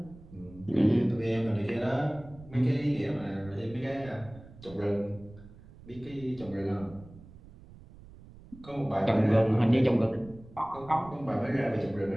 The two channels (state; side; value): noise; right; rumble, 20 dB below the sound